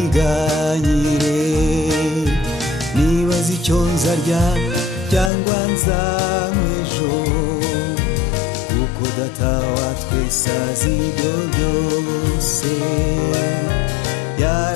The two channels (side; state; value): right; drops out; at 5.3 s